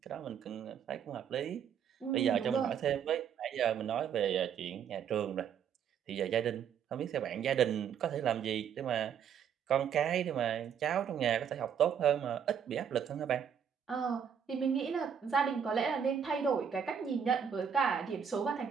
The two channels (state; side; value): quieter; left; 7.9 dB